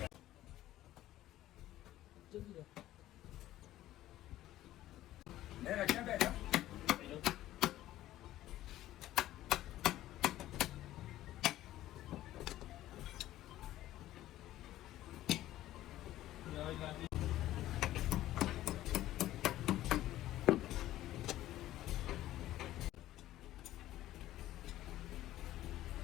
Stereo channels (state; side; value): quieter; right; 14.4 dB